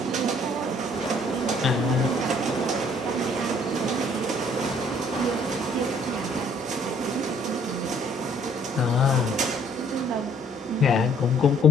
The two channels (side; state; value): both; normal; correlation 0.61